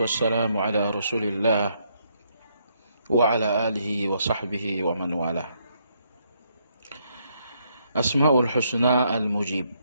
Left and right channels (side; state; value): both; inverted; correlation -0.74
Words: wassalamu ala rasulillah wa ala alihi wa sahbihi wa man wala. Asma'ul husna al-mujib,